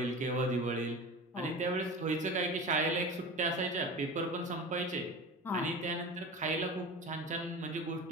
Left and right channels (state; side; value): normal; both; correlation 0.32